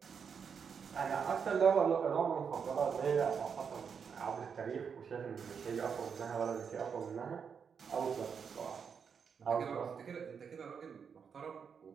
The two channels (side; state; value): left; quieter; 6.6 dB